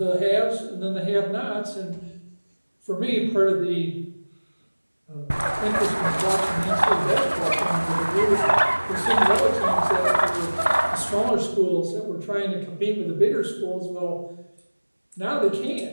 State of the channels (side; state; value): both; inverted; correlation -1.00